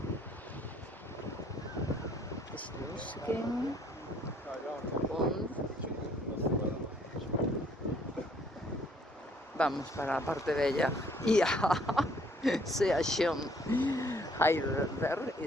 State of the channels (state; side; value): normal; both; correlation 0.62